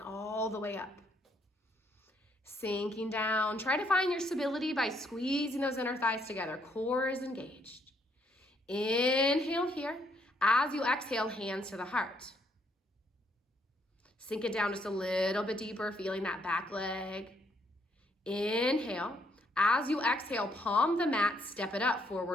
the way up. Sinking down. Try to find your stability by squeezing those inner thighs together. Core is engaged. Inhale here. As you exhale, hands to the heart. Sink it down just a little bit deeper, feeling that back leg. Inhale. As you exhale, palm the mat, step it up,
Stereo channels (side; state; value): both; normal; correlation 0.72